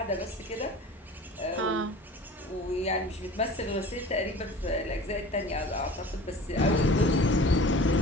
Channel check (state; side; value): normal; both; correlation 0.41